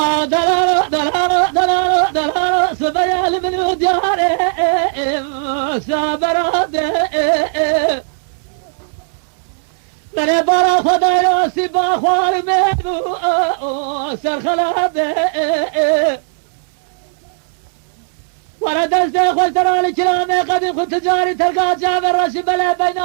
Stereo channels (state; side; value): silent; left; digital silence